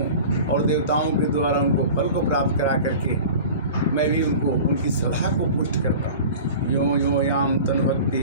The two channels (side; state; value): both; inverted; correlation -0.38